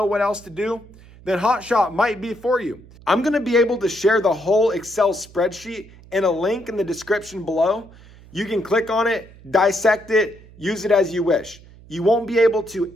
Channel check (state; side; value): noise; right; hum, 22 dB below the sound